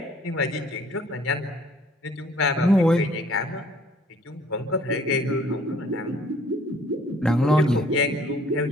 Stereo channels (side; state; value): both; normal; correlation 0.58